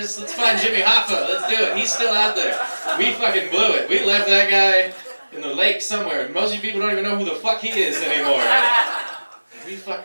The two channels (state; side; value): inverted; both; correlation -1.00